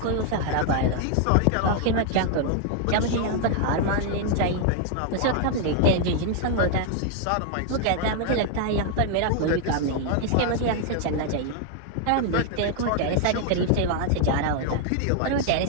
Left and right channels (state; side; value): different; both; correlation 0.00